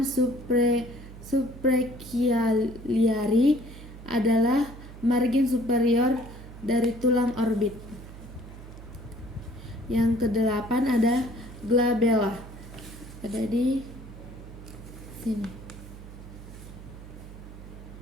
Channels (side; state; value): right; noise; hum, 15 dB below the sound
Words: suprachialiari, adalah margin superior dari tulang orbit. Yang kedelapan ada glabella, ada di sini.